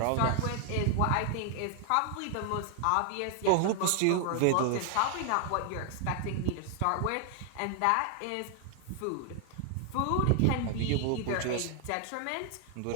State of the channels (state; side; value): different; both; correlation 0.00